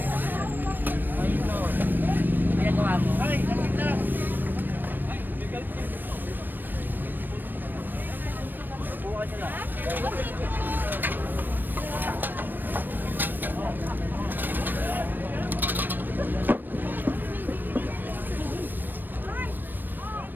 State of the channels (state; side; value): late; left; 0.092 ms